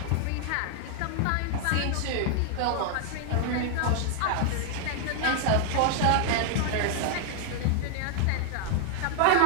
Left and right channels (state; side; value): different; both; correlation 0.00